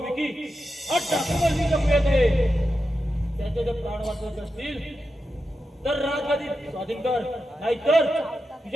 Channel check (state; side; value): normal; both; correlation 0.89